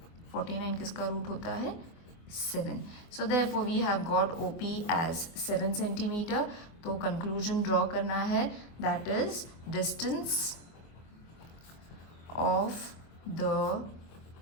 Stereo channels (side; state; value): right; late; 25 ms